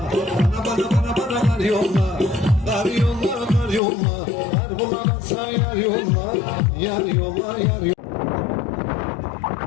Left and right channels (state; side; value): drops out; right; at 3.8 s